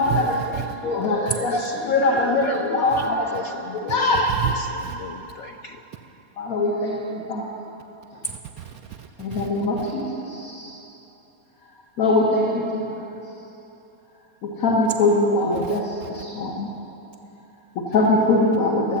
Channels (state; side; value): late; right; 4.2 ms